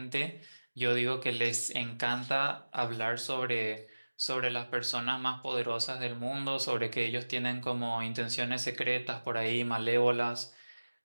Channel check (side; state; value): both; inverted; correlation -1.00